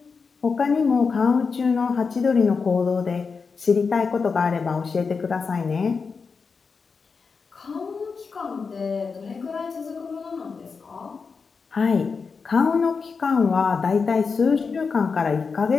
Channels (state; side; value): quieter; right; 5.1 dB